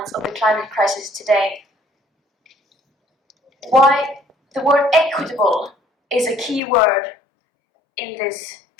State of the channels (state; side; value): drops out; right; at 6.6 s